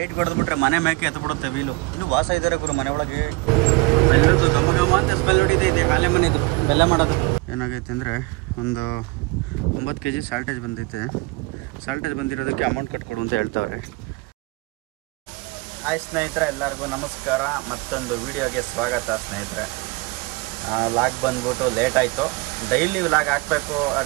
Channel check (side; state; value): left; quieter; 24.9 dB